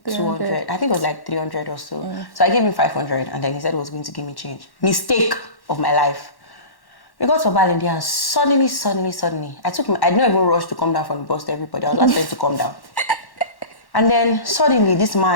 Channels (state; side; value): late; right; 1.1 ms